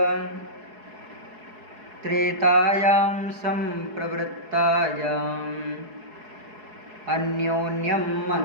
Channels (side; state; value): left; late; 4.7 ms